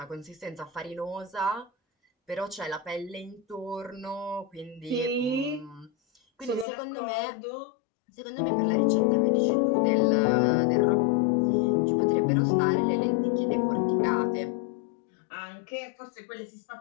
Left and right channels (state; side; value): drops out; right; at 6.7 s